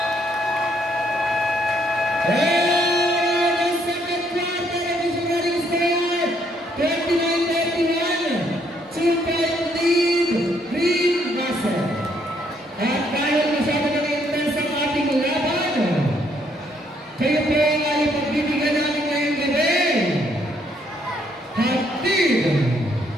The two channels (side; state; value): both; normal; correlation 0.70